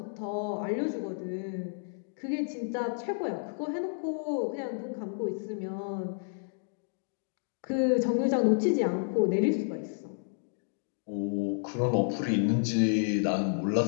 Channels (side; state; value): right; silent; digital silence